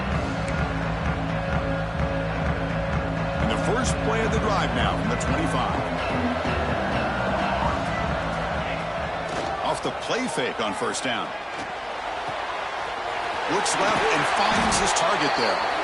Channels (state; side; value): identical; both; correlation 1.00